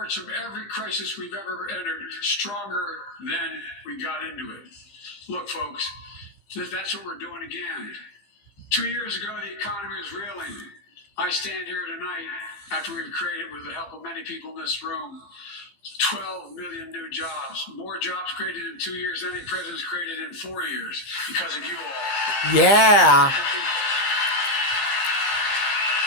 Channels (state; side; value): late; right; 15 ms